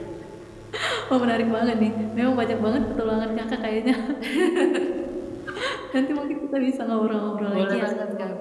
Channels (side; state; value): both; identical; correlation 1.00